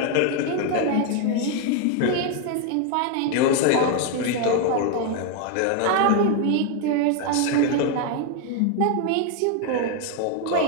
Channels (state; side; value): different; both; correlation 0.01